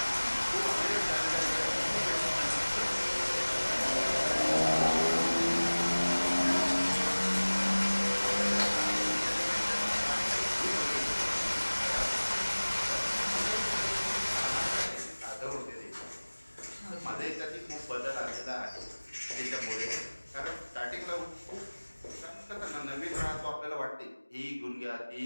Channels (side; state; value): both; inverted; correlation -1.00